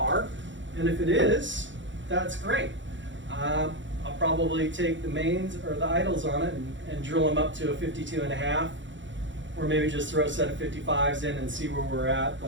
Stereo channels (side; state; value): left; late; 0.54 ms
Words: And if it is, that's great. I'll probably take the mains or the idles on it and drill them up to a 52.5, or maybe just throw a set of 55s in and see where we're at.